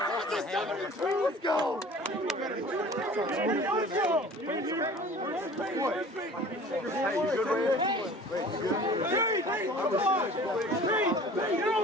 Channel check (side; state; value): both; normal; correlation 0.45